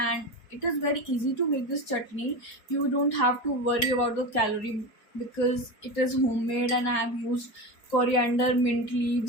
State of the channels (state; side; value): late; right; 4.5 ms